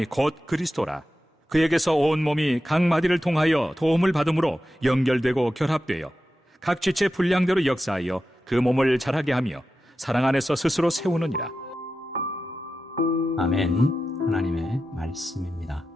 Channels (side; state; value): both; normal; correlation 0.91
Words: 곧 그리스도라. 그에게서 온 몸이 각 마디를 통하여 도움을 받음으로 연결되고 결합되어 각 지체 분량대로 역사하여 그 몸을 자라게 하며 사랑 안에서 스스로 세우느니라. 아멘. 하나님의 말씀입니다.